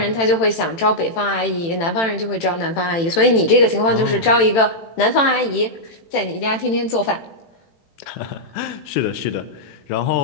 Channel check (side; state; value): right; late; 18 ms